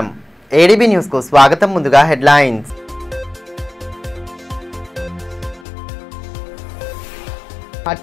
ADB news కు స్వాగతం. ముందుగా హెడ్లైన్స్.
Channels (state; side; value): drops out; right; at 5.7 s